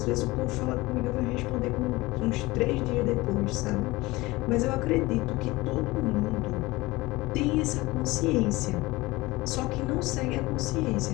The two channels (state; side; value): quieter; right; 20.7 dB